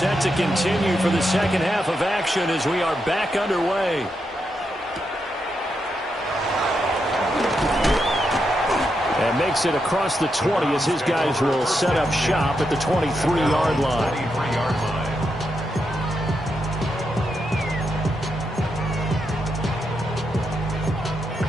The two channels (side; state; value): both; normal; correlation 0.84